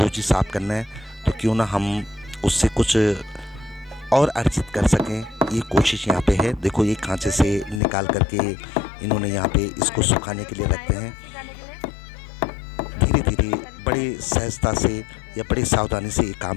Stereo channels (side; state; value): right; drops out; at 7.8 s